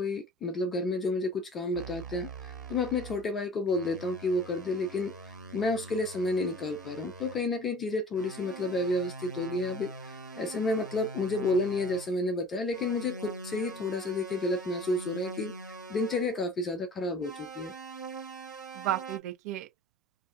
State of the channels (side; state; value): both; normal; correlation 0.45